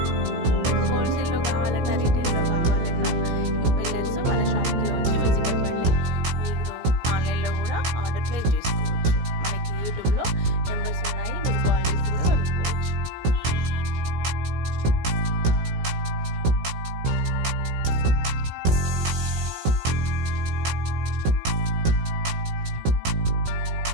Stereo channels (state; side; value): late; left; 17 ms